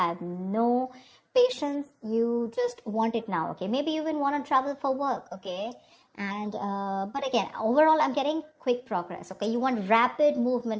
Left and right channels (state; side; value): identical; both; correlation 1.00